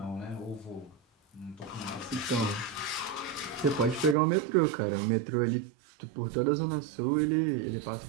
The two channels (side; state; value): left; drops out; at 4.2 s